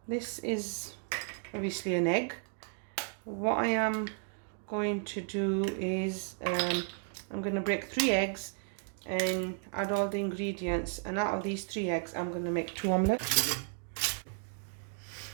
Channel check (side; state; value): left; silent; 55 dB below the other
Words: This is obviously an egg. What I am going to do is I'm going to break 3 eggs and add all the ingredients, and out of these 3 eggs I'm going to make 2 omelettes.